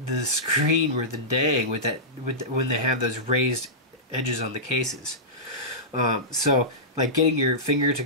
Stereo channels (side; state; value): both; normal; correlation -0.15